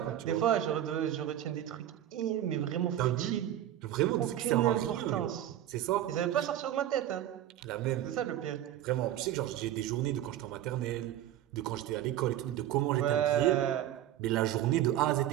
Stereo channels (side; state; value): left; quieter; 12.2 dB